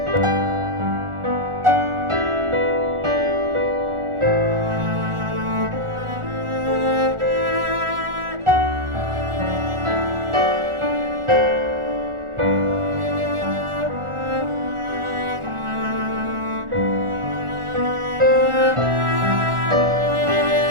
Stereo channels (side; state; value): left; late; 1.4 ms